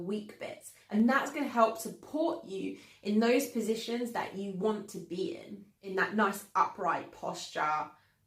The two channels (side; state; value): both; identical; correlation 1.00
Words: bits. And that's going to help support you in those positions that you want to be in that nice upright posture